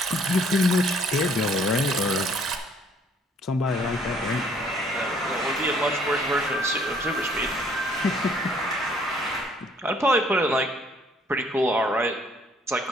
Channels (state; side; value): normal; both; correlation 0.62